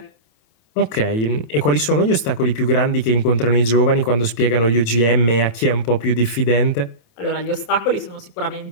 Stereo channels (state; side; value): late; right; 27 ms